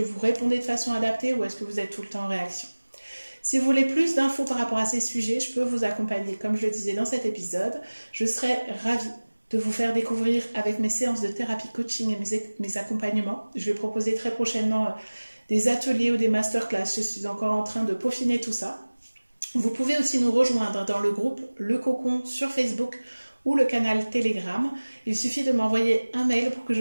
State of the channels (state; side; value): inverted; both; correlation -1.00